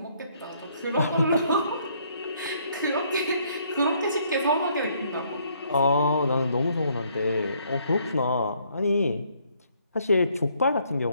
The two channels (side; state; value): both; inverted; correlation -0.67